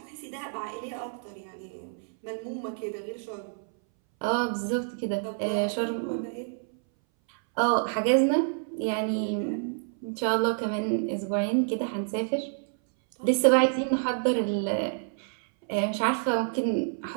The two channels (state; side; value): silent; left; 59 dB below the other